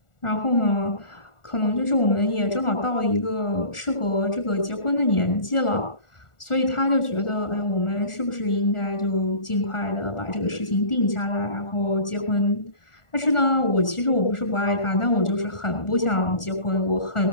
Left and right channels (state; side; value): late; right; 1.4 ms